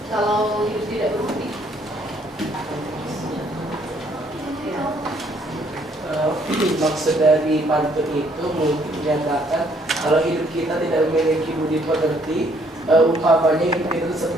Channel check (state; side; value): normal; both; correlation 0.66